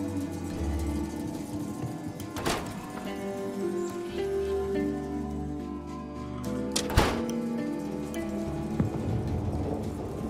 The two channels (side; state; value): both; identical; correlation 1.00